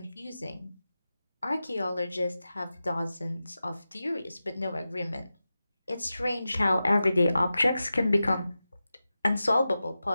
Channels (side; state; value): both; inverted; correlation -0.93